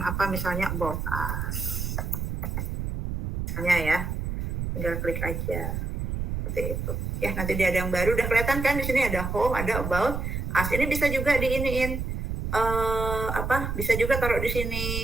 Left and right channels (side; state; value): right; noise; rumble, 3 dB below the sound